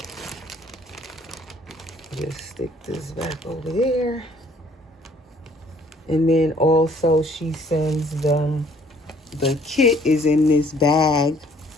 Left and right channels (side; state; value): both; normal; correlation 0.59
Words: just stick this back over there. And then also she sends them, the kit is in this bag.